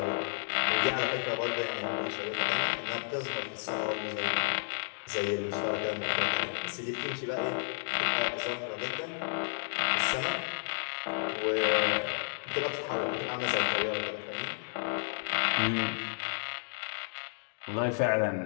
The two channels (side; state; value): right; silent; digital silence